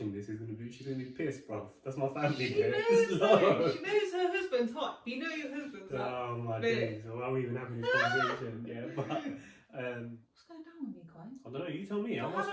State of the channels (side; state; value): both; identical; correlation 1.00